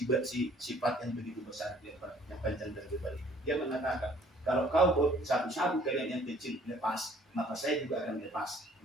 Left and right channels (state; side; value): normal; both; correlation 0.57